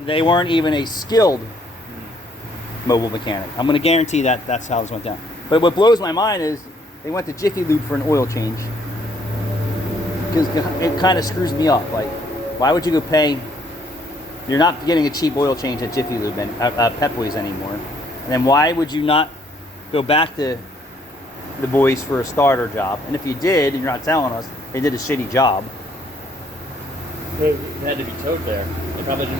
they weren't even a skilled mobile mechanic. I'm going to guarantee that that's how this went down. But what blows my mind is they went to Jiffy Lube for an oil change. Because it kind of screws me up. Like, why would you go pay? You're not getting a cheap oil change at Jiffy Lube and Pep Boys anymore. And then why would you not go back to the boys for a starter job? And if you did, and you're not telling us, they did a shitty job. It had to be towed there. They probably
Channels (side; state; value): both; normal; correlation 0.66